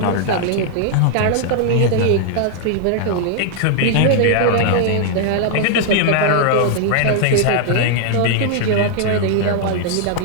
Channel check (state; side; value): different; both; correlation 0.00